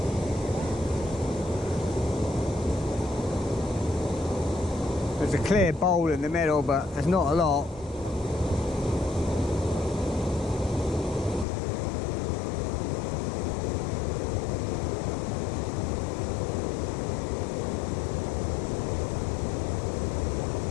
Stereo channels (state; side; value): drops out; right; at 11.5 s